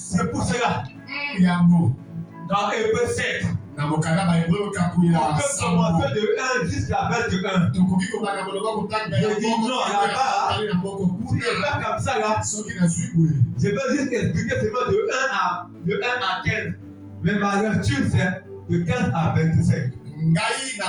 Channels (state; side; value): identical; both; correlation 1.00